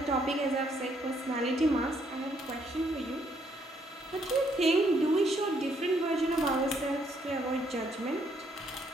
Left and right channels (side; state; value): both; normal; correlation 0.70